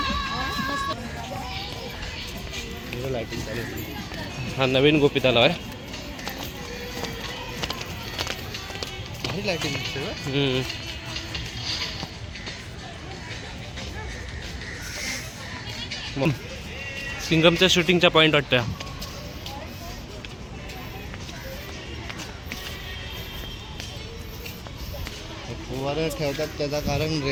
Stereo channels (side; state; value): both; identical; correlation 1.00